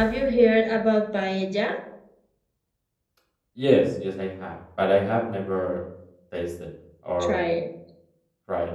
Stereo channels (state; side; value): identical; both; correlation 1.00